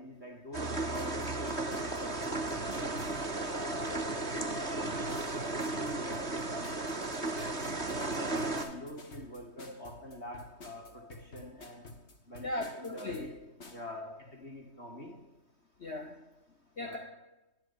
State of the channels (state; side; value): late; right; 3.2 ms